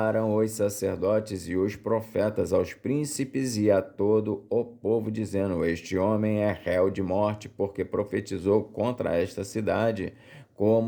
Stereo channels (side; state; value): both; identical; correlation 1.00